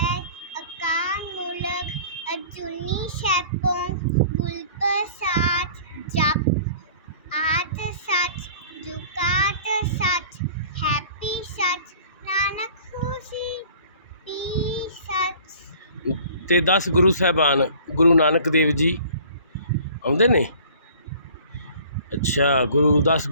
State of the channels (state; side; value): inverted; both; correlation -0.48